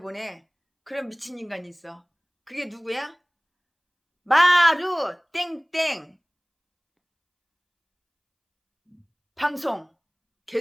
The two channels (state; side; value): identical; both; correlation 1.00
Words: 그런 미친 인간이 있어. 그게 누구야? 마루 땡땡 방송